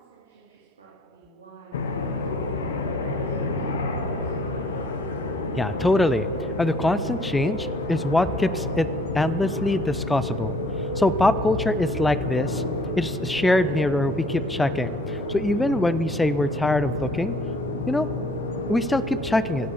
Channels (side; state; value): both; normal; correlation 0.59